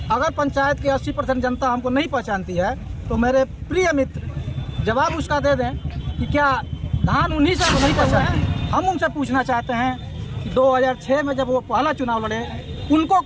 अगर पंचायत की 80% जनता हमको नहीं पहचानती है तो मेरे प्रिय मित्र जवाब उसका दे दें कि क्या धान उन्हीं से नहीं पहचानती। हम उनसे पूछना चाहते हैं कि 2006 में जब वो पहला चुनाव लड़े उनको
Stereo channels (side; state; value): both; identical; correlation 1.00